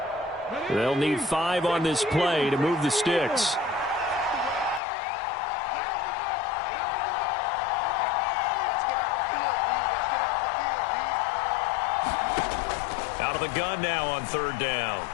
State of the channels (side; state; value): right; drops out; at 4.8 s